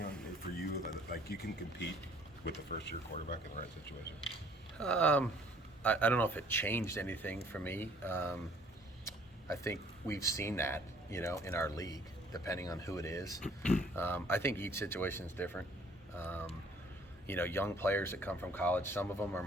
for you? Like you can compete with the first-year quarterback in the right situation? I don't know if it changed anything for me. I think we've seen that, in our league, depending on who it is. I think each situation is different. Young players that come from college, some of them are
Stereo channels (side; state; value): both; normal; correlation 0.58